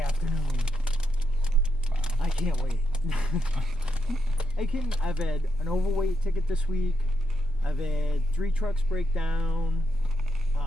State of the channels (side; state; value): both; normal; correlation 0.82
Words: Wow. I can't wait. I've had an overweight ticket this week. I've had 3 trucks break down.